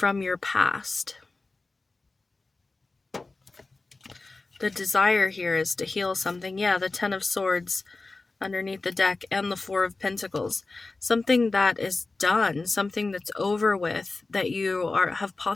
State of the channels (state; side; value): quieter; right; 3.5 dB